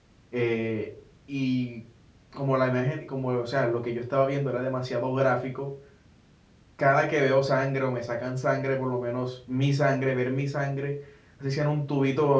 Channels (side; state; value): both; identical; correlation 1.00